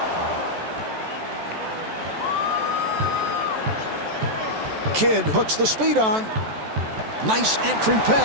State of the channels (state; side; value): late; left; 14 ms